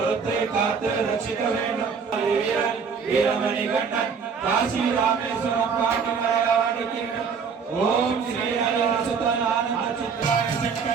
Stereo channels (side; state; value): left; quieter; 6.0 dB